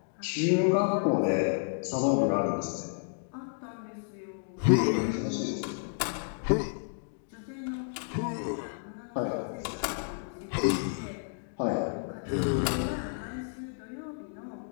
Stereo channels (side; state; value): right; silent; digital silence